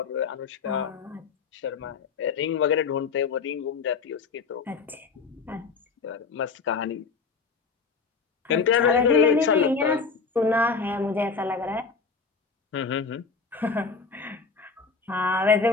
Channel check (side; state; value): right; quieter; 4.9 dB